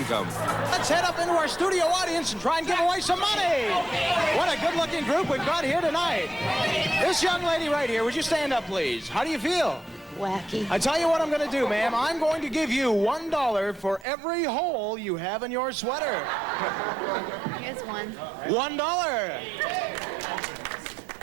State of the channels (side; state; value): left; drops out; at 14.1 s